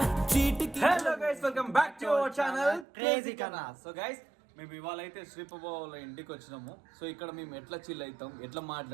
చీటికి. Hello guys, welcome back to our channel crazy కన్నా. సో గైస్, మేము ఇవాళ అయితే శ్రీపబాబు వాళ్ళ ఇంటికి వచ్చినాము. సో ఇక్కడ మేము ఎట్లా చిల్ అవుతాం, ఎట్లా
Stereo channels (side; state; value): left; drops out; at 2.9 s